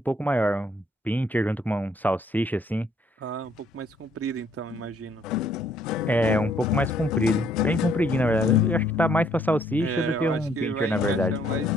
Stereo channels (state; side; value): normal; both; correlation 0.66